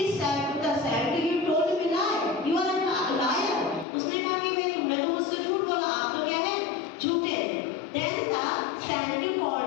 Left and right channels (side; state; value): right; drops out; at 3.9 s